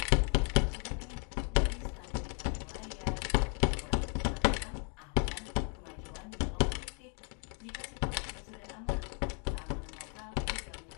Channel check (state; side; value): quieter; right; 38.2 dB